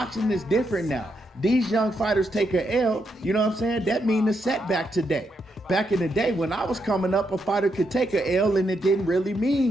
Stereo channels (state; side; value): normal; both; correlation 0.80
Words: is different now. These young fighters take a L, you know what I'm saying? That means a setback today. Back in the day when I was coming up, a fighter could take a L and it didn't really